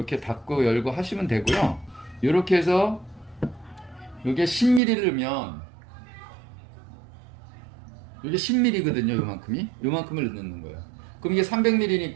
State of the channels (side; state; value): left; drops out; at 4.8 s